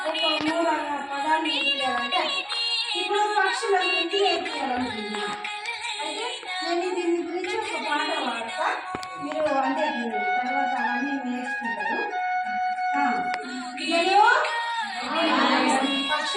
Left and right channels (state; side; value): identical; both; correlation 1.00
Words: 3 పదాలు నేర్పియాలంటే ఇప్పుడు పక్షుల గురించి నేర్పియాలనుకుంటున్నా. అయితే నేను దీని గురించి ఒక పాట పాడతా, మీరు అంటే తర్వాత అవన్నీ నేర్చుకుంటారు.